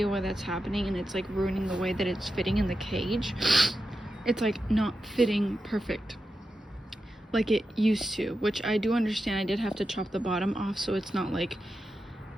why that's happening, and it's like ruining the way that it's fitting in the cage. It's like not fitting perfect. like it used to, which I do understand. I did have to chop the bottom off so it's not like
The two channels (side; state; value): both; normal; correlation 0.89